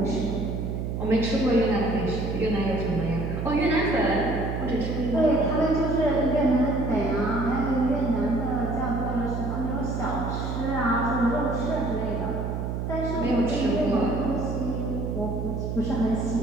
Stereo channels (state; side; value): noise; right; hum, 3 dB below the sound